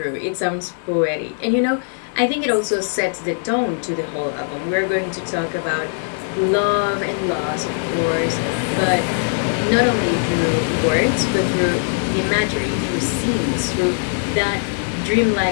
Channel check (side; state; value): right; silent; digital silence